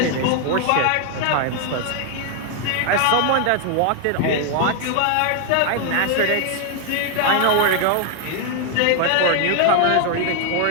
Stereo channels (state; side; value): different; both; correlation 0.00